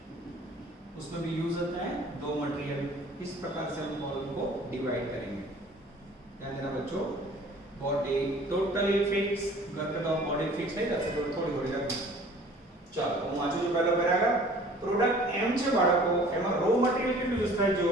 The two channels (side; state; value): both; normal; correlation 0.50